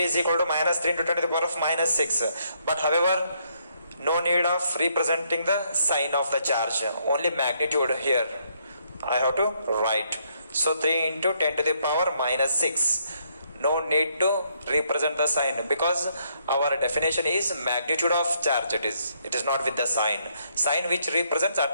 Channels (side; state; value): both; inverted; correlation -0.73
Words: equal to minus 3 into 10 to the power of minus 6. But however, no need of representing the sign of the charge, only magnitude here I have to write. So 3 into 10 to the power minus 6. No need to represent the sign because our definition is magnitude of charge. It is not with the sign which represents